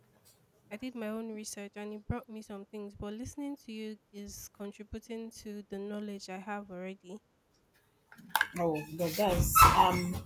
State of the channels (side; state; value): both; identical; correlation 1.00